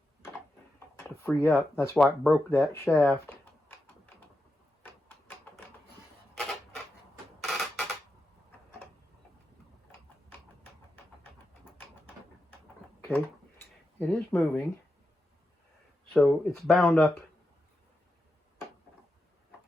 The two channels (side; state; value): both; normal; correlation 0.87